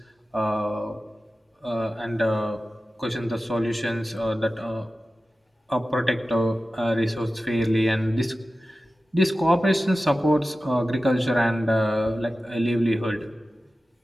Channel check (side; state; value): both; normal; correlation 0.95